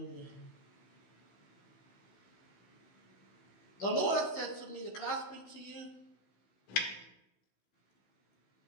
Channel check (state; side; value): late; right; 16 ms